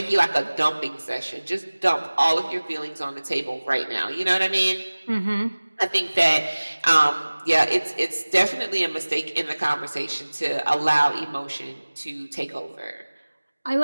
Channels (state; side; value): inverted; both; correlation -1.00